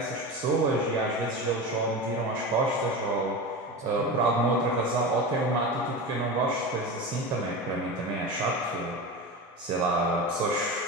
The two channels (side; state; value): both; normal; correlation 0.26